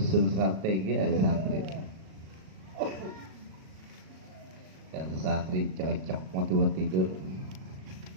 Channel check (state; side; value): late; left; 37 ms